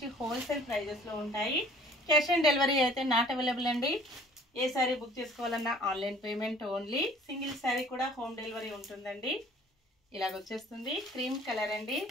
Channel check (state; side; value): normal; both; correlation 0.53